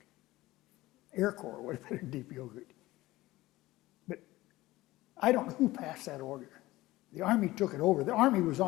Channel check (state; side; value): quieter; right; 18.0 dB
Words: Air Corps would have been in deep yogurt. But I don't know who passed that order. The Army took it over. The Army was